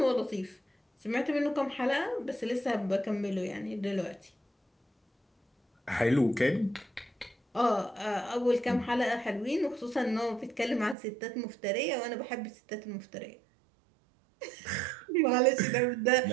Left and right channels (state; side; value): drops out; left; at 11.0 s